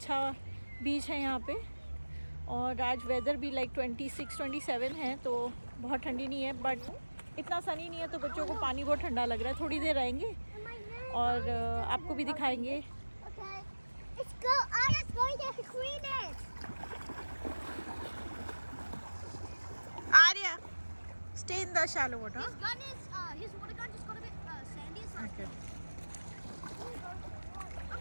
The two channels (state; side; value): inverted; both; correlation -1.00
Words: बीच है यहाँ पे। और आज वेदर भी लाइक 26-27 है, तो बहुत ठंडी नहीं है बट इतना सनी नहीं है, तो बच्चों को पानी बहुत ठंडा लग रहा है। थोड़ी देर रहेंगे और आपको भी दिखाएंगे। Okay, let's go. Anna's going to clean it. Arya, stay in the shallow water. His gun is, his water gun just got a bit sandy. So Okay.